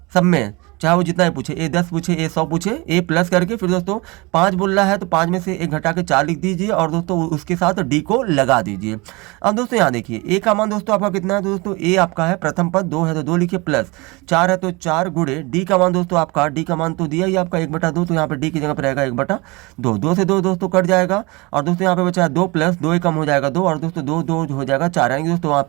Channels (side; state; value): left; quieter; 25.4 dB